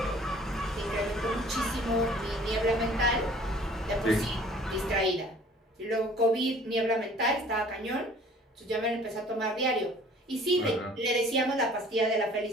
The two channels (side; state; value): both; normal; correlation 0.52